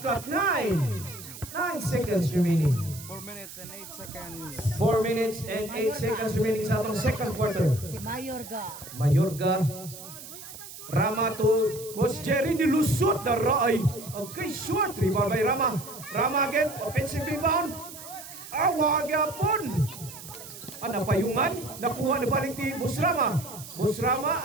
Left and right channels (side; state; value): right; noise; hiss, 14 dB below the sound